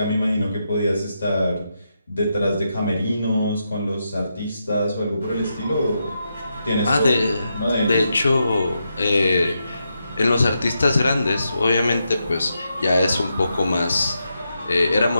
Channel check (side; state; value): both; inverted; correlation -0.84